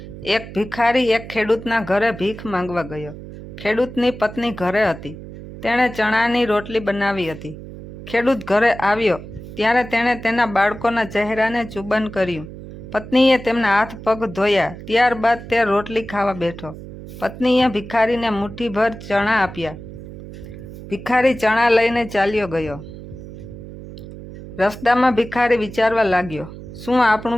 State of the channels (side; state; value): right; noise; hum, 13 dB below the sound